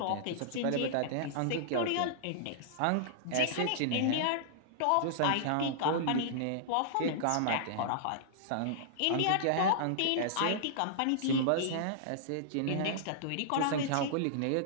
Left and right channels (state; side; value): different; both; correlation -0.02